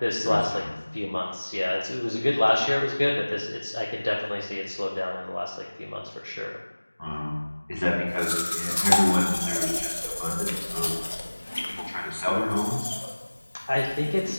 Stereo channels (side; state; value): both; inverted; correlation -1.00